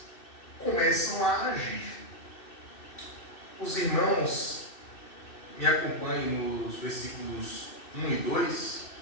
começam a agir. Os irmãos me acompanhem nos versículos 1 e 2,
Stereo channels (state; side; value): late; right; 2.6 ms